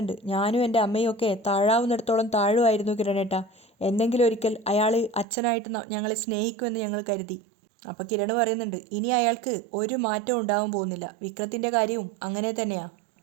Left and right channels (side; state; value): left; drops out; at 5.2 s